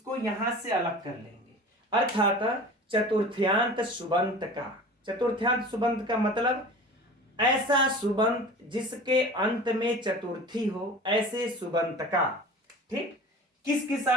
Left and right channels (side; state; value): both; normal; correlation 0.38